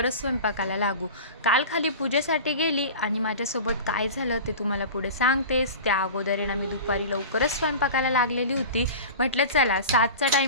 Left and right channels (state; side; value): inverted; both; correlation -0.34